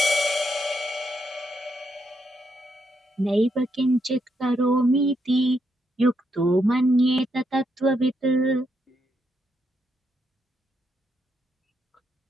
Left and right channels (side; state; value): both; normal; correlation 0.79